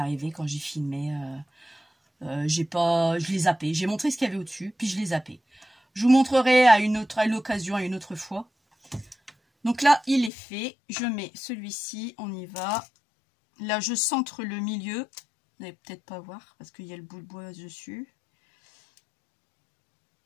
quand j'ai filmé. Je l'ai zappé. J'ai montré ce qu'il y avait au-dessus, puis je l'ai zappé. Je vous montrerai à l'occasion, à une autre fois. Donc là, il est fait. Je mets celui-ci. On y va. Là, je centre le milieu. Vous n'allez peut-être pas voir parce qu'il y a le bout de bois dessus.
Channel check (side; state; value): right; drops out; at 10.3 s